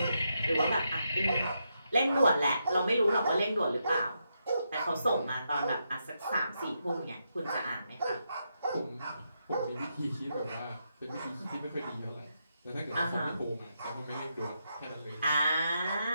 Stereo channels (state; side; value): inverted; both; correlation -0.82